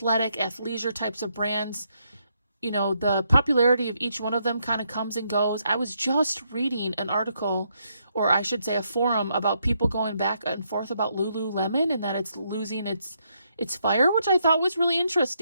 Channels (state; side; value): inverted; both; correlation -0.77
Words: athleisure types of brands. You know, the popularity of each one of them kind of comes and goes. I was just reading an article, or I should say a forum, about people going back and forth about Lululemon and that it's losing its fire, which I thought was really